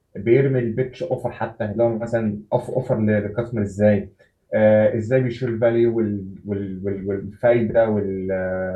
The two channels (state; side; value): identical; both; correlation 1.00